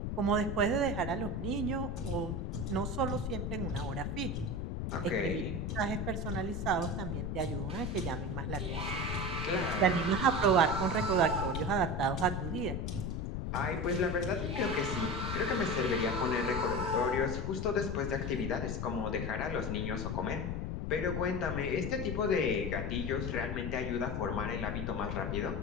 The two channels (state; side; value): noise; left; rumble, 2 dB below the sound